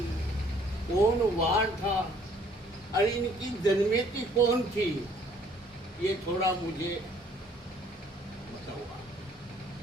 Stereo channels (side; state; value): both; normal; correlation 0.60